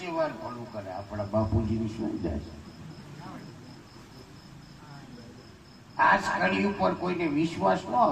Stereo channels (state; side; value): identical; both; correlation 1.00